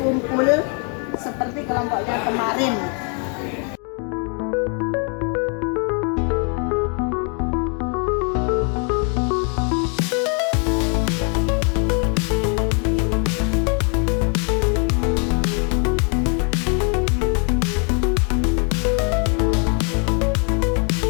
seperti kelompoknya kemarin.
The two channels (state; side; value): quieter; right; 38.7 dB